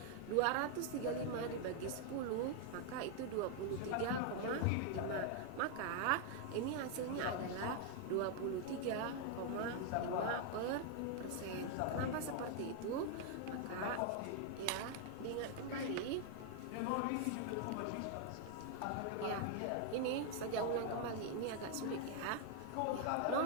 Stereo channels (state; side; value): different; both; correlation 0.00